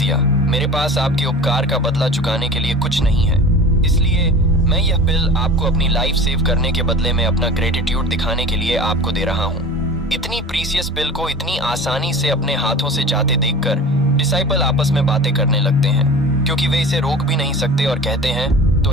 मेरे पास आपके उपकार का बदला चुकाने के लिए कुछ नहीं है, इसलिए मैं यह पिल आपको अपनी लाइफ सेव करने के बदले में अपना ग्रेटिट्यूड दिखाने के लिए आपको दे रहा हूँ। इतनी प्रीसियस पिल को इतनी आसानी से अपने हाथों से जाते देखकर डिसाइपल आपस में बातें करने लगते हैं, क्योंकि वे इसे रोक भी नहीं सकते और कहते हैं तो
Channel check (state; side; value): normal; both; correlation 0.37